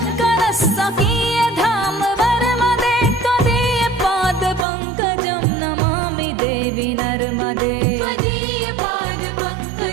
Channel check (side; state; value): left; drops out; at 4.7 s